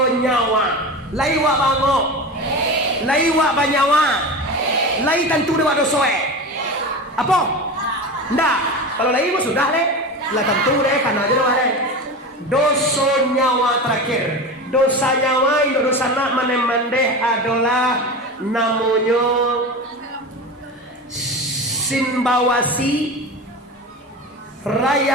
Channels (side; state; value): both; normal; correlation 0.27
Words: nyawa. Laiwa bango. Laiwa banyawa. Lai tentu dewa doso Apa? Ndak. Kalau laiwa sudah le. Lah tentu deh karena aja doa le. Doso nyawa terakhir. Dosa nyawa itu dosa nak manemandeh adalah namanya simbawasi